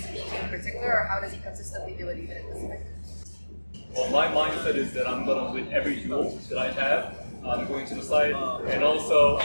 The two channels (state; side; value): inverted; both; correlation -1.00